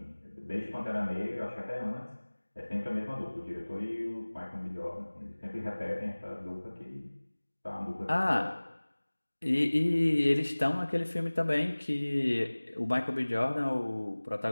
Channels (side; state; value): both; inverted; correlation -1.00